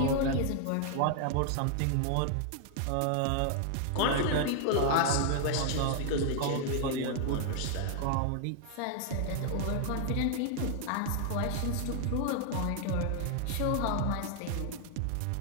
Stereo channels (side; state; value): both; different; correlation 0.00